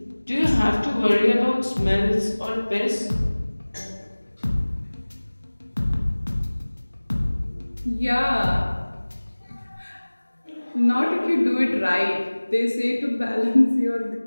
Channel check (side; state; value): both; inverted; correlation -1.00